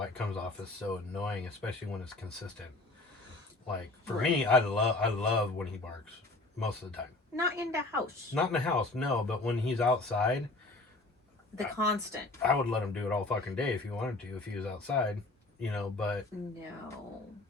it comes off as so annoying, especially when it's consistent. Like for me, I love when he barks most of the time. Not in the house. Not in the house, no. But when he's outside, constant. I would let him do it all fucking day if he wanted to. If he was outside, you know. But no,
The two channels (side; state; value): right; quieter; 3.1 dB